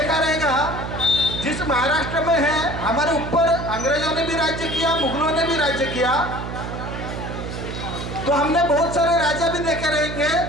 रहेगा, जिस महाराष्ट्र में है हमारे ऊपर अंग्रेजों ने भी राज्य किया, मुगलों ने भी राज्य किया, तो हमने बहुत सारे राजा भी देखे रहेंगे।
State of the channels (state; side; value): noise; right; hum, 7 dB below the sound